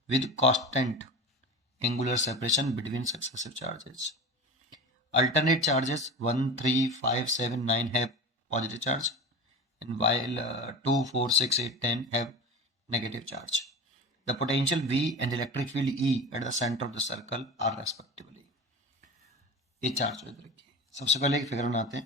with constant angular separation between successive charges. Alternate charges 1, 3, 5, 7, 9 have positive charge, and while 2, 4, 6, 8, 10 have negative charge. The potential V and electric field E at the center of the circle are respectively. ये charge याद रखिए। सबसे पहले एक figure बनाते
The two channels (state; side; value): normal; both; correlation 0.30